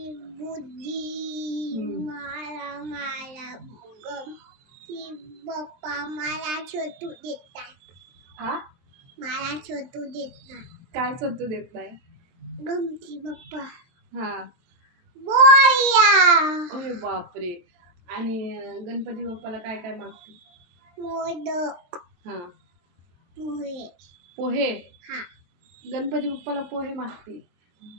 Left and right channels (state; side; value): late; left; 23 ms